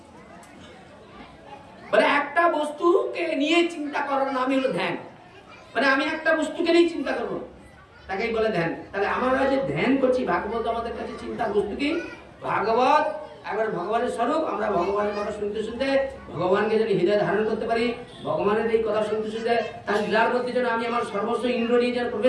মানে একটা বস্তুকে নিয়ে চিন্তা করার নামই হলো ধ্যান। মানে আমি একটা বস্তুকে নিয়ে চিন্তা করবো, তাকেই বলে ধ্যান। তাহলে আমরা যে ধ্যান করছি, ভাগবত আমাদের কাছে চিন্তার বস্তু কি? ভাগবত একবার ভগবানের স্বরূপ। আমরা ভগবানের কথা শুনতে শুনতে ভগবানকে যদি হৃদয় ধারণ করতে পারি, ভগবানের এই কথা শুনতে শুনতে তার লীলার মধ্যে যেন আমি আমার সর্বস্ব ইন্দ্র নিয়ে যেন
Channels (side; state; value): both; identical; correlation 1.00